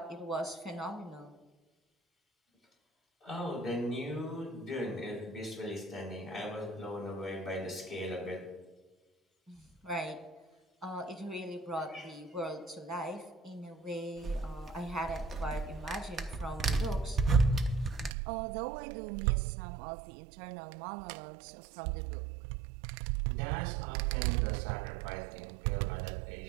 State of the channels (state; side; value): drops out; left; at 18.2 s